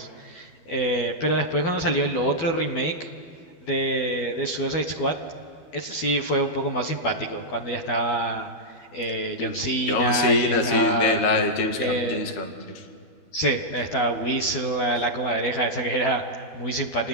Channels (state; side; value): late; right; 12 ms